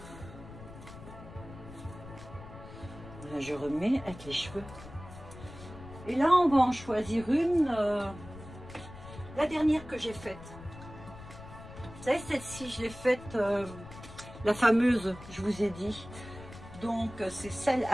là je remets avec les cheveux. Et là on va en choisir une, la dernière que j'ai faite. Vous savez celle-ci je l'ai faite, la fameuse je vous ai dit. Donc c'est celle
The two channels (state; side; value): noise; left; rumble, 15 dB below the sound